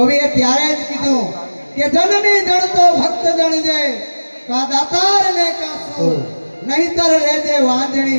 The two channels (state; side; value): inverted; both; correlation -1.00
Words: ત્યારે જ કીધું કે જનની જણતો ભક્ત જણજે કા દાતાર ને કા સૂર નહીતર રહેજે